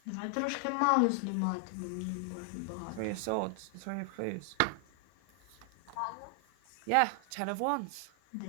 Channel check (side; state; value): both; different; correlation 0.00